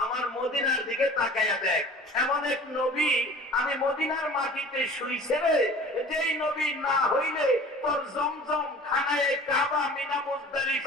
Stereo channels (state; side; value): normal; both; correlation 0.43